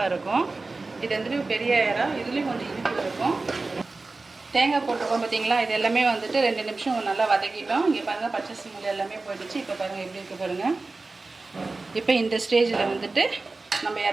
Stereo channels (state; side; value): quieter; left; 3.5 dB